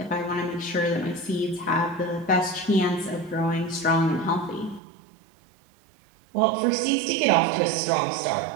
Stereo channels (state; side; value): drops out; left; at 4.8 s